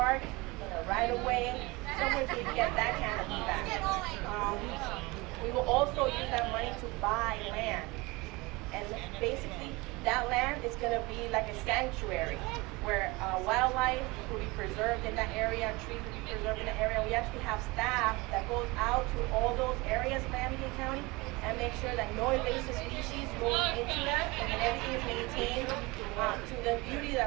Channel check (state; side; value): quieter; left; 23.9 dB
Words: in a right-of-way, somewhere so you can get that canopy back. We will also use that money to buy land. And basically, that land is going to be like a sanctuary where wildlife will be preserved in that area, trees will be preserved in that area. We actually have staff that goes out to all those areas in Miami-Dade County and make sure that no invasive species goes into that and that everything is maintained to the beauty